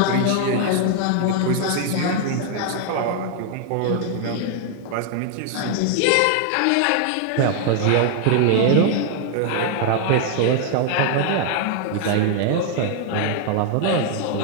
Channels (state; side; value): different; both; correlation 0.00